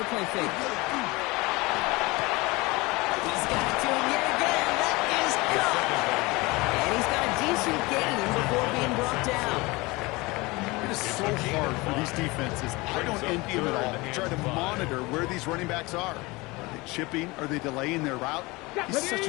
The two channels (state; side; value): quieter; right; 23.4 dB